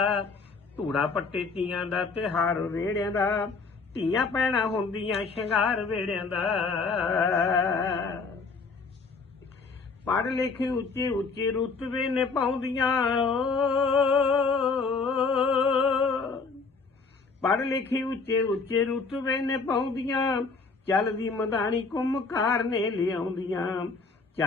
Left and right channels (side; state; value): right; quieter; 4.5 dB